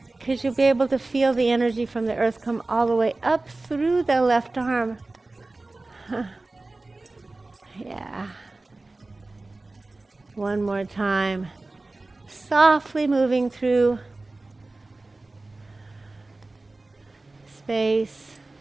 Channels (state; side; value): quieter; left; 3.1 dB